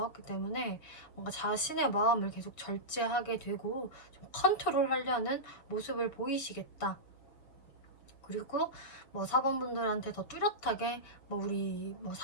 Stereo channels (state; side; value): late; right; 6.7 ms